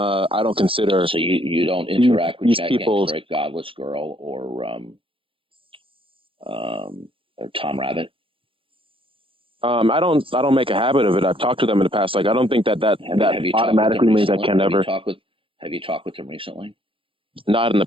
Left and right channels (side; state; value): left; late; 0.26 ms